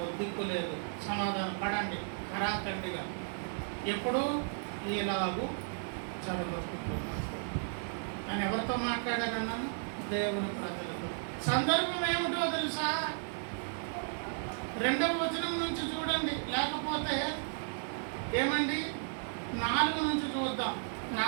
దిక్కు లేదు. సమాధాన పడండి ఖరాఖండిగా. ఎప్పుడు ఇలాగూ జరగబోతుంది అని ఎవరితో మాట్లాడానన్నాను? దేవుని ప్రజలతో. సందర్భం ఏమిటో తెలుసా? 2వ వచనం నుంచి చూడండి, లేకపోతే ఏమండి 4 నుంచి చూద్దాం. నా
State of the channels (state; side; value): silent; left; 55 dB below the other